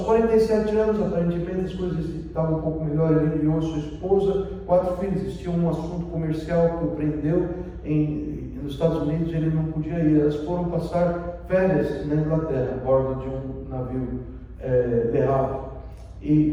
anos, aparentemente as coisas estavam um pouco melhor. Ele enviou sua esposa, 4 filhos. Existia um assunto comercial que o prendeu nos Estados Unidos, ele não podia ir. Elas foram passar férias na Inglaterra, a bordo de um navio Le Havre.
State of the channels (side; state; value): both; identical; correlation 1.00